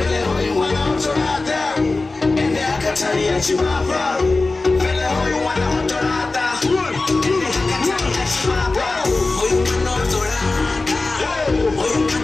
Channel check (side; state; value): right; quieter; 3.4 dB